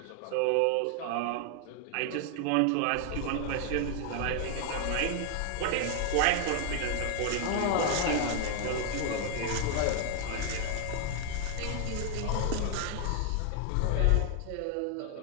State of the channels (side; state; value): both; different; correlation 0.00